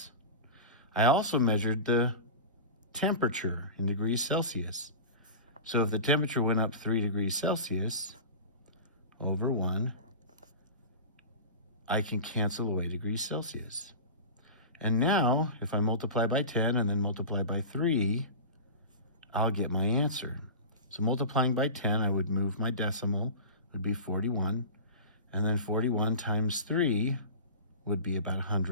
I also measured the temperature in degrees Celsius. So if the temperature went up 3 degrees Celsius, over 1, I can cancel away degrees Celsius. And now, if I multiply by 10 and then multiply by 3, I'll get my answer. So multiplying by 10, I would move my decimal, would be 41. And then 41 times 3 would be about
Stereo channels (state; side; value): inverted; both; correlation -0.32